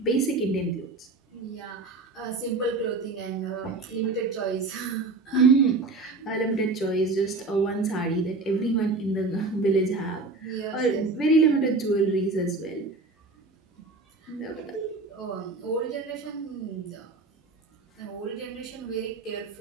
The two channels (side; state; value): left; quieter; 3.5 dB